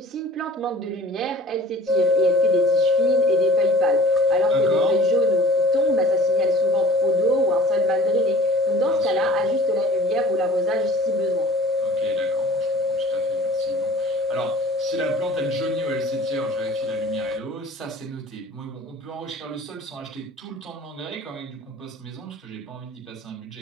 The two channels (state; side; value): normal; both; correlation 0.45